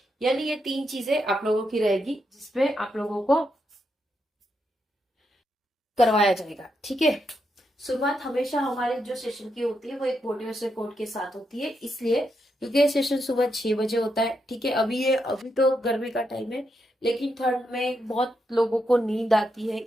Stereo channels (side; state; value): both; normal; correlation 0.82